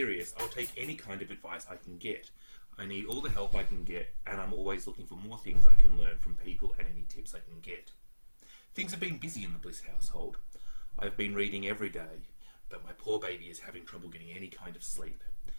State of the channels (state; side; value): inverted; both; correlation -1.00